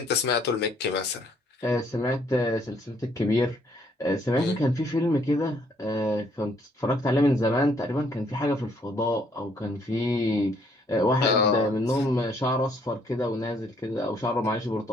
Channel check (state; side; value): normal; both; correlation 0.66